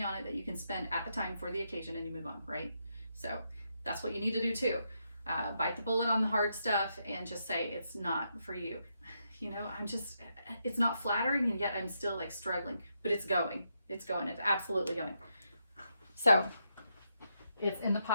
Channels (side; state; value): both; inverted; correlation -0.81